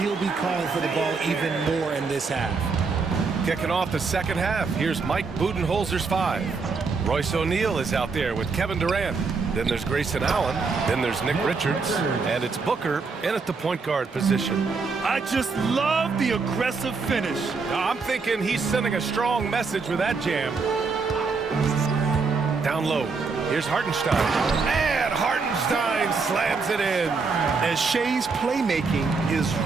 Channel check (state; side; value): quieter; left; 4.6 dB